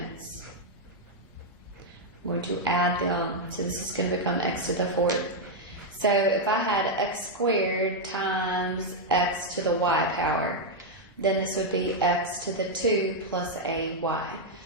I'm going to add them. So this is going to become x to the fourth. So if I had x squared times x to the y power, then this would be x to the 2 plus a y.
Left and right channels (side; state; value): both; normal; correlation 0.00